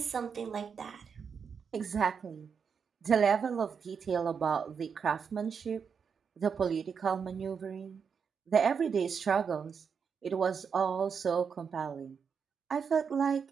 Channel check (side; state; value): left; quieter; 6.4 dB